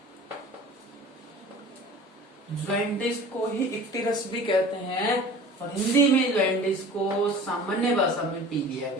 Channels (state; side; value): normal; both; correlation 0.42